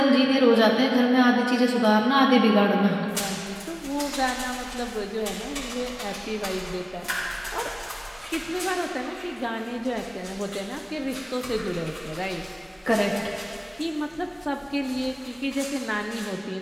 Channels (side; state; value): both; identical; correlation 1.00